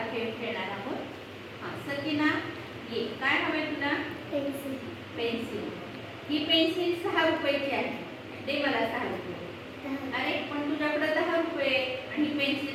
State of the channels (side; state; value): both; identical; correlation 1.00